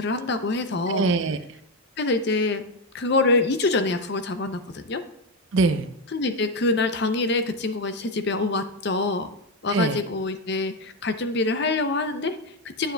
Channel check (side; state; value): both; normal; correlation 0.09